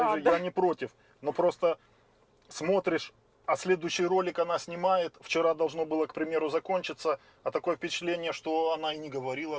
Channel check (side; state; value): both; identical; correlation 1.00